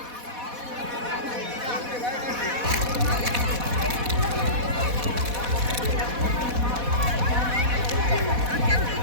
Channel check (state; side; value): late; left; 4.1 ms